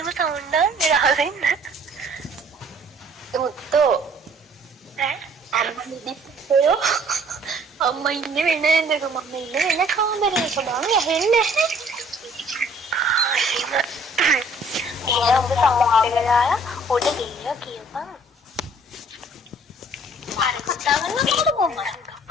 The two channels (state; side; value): normal; both; correlation 0.56